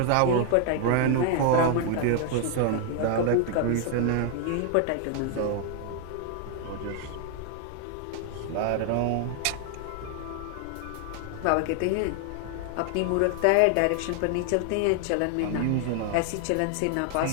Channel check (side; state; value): both; different; correlation 0.00